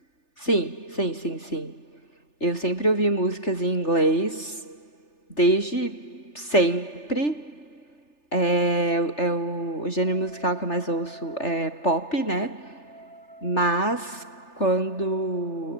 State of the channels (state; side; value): late; right; 3.4 ms